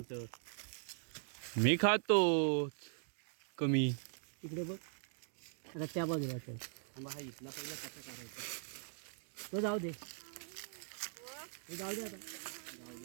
मी खातो कमी. इकडे बघ. आता त्या बाजूला चल. आंबा हा इथला पहिला कसा करायचा? तो जाऊ दे. तो जाऊ दे आता.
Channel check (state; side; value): silent; left; digital silence